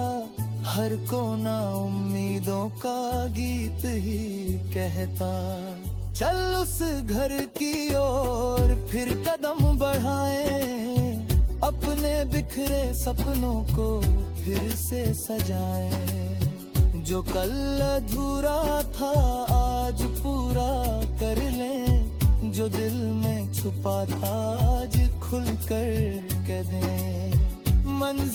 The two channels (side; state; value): both; identical; correlation 1.00